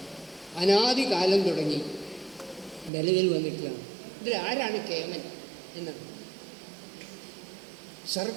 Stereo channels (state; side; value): drops out; left; at 2.9 s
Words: അനാദികാലം തുടങ്ങി നിലവിൽ വന്നിട്ടുള്ളതാണ്. ഇതിൽ ആരാണ് കേമൻ എന്നാണ്.